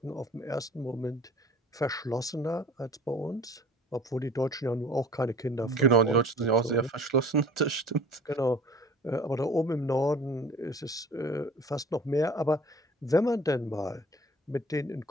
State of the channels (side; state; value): both; normal; correlation 0.47